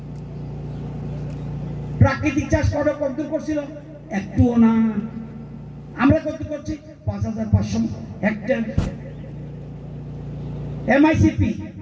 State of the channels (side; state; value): both; identical; correlation 1.00